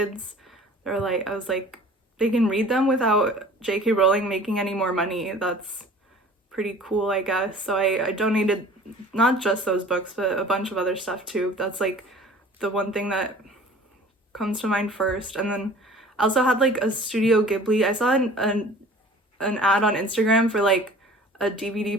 They're like, I was like, they can read them without J.K. Rowling making any more money. That's pretty cool, I guess. So I donated not just those books, but a bunch of other stuff too. That's like the one thing that comes to mind first. And then I also had like a Studio Ghibli. I saw an ad on Instagram for like a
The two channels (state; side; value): normal; both; correlation 0.46